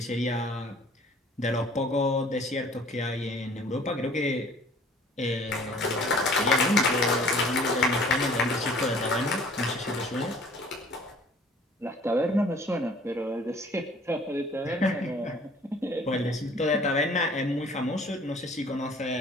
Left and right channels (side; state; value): both; normal; correlation 0.52